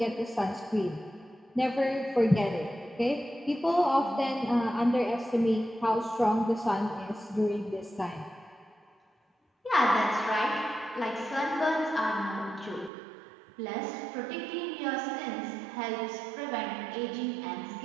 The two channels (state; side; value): drops out; left; at 12.9 s